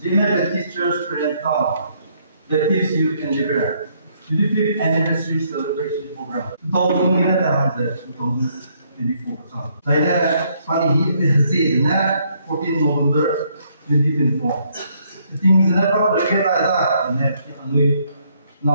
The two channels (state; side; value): inverted; both; correlation -0.70